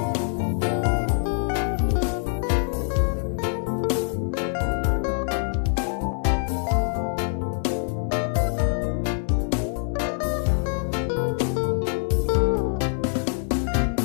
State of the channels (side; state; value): right; silent; 55 dB below the other